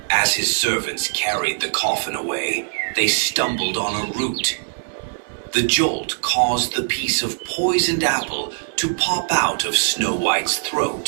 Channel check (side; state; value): left; silent; 65 dB below the other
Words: As his servants carried the coffin away, they stumbled on a root. The jolt caused the piece of poisoned apple to pop out of Snow White's